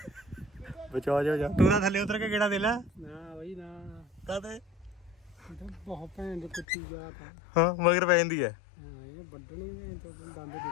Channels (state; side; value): drops out; right; at 6.7 s